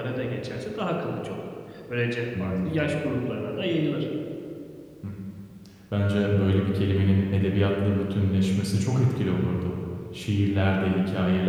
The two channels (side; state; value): both; identical; correlation 1.00